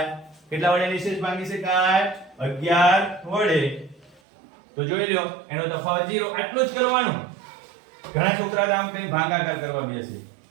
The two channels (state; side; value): drops out; left; at 4.2 s